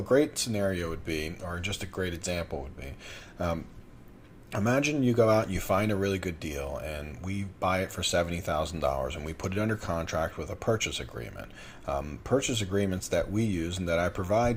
great scenario would be, or just a great example would be, imagine you go out and you find a really good deal and we buy it for $70,000 and we put it under contract with a purchase agreement. Purchase agreements that we use and that I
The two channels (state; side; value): identical; both; correlation 1.00